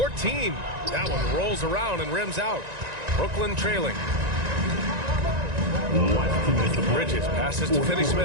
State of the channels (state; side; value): late; left; 1.9 ms